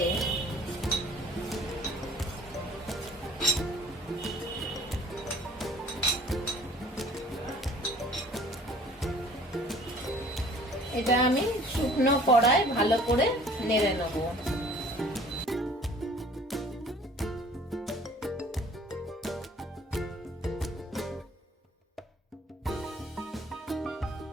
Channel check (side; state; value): both; normal; correlation 0.52